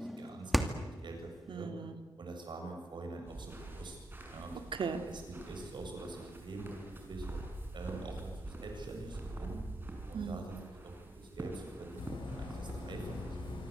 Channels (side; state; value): both; normal; correlation 0.83